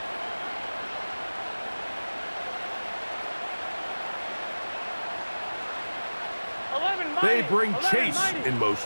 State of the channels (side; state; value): both; inverted; correlation -1.00